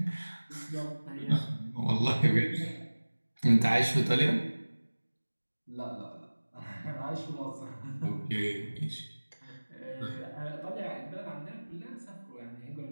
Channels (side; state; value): both; inverted; correlation -1.00